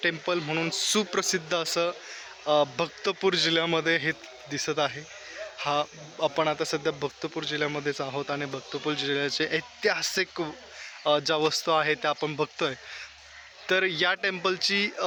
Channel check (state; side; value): identical; both; correlation 1.00